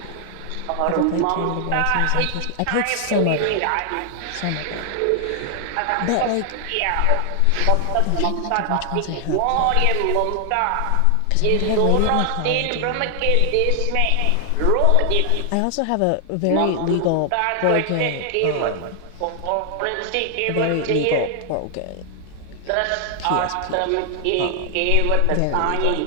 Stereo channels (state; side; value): different; both; correlation 0.00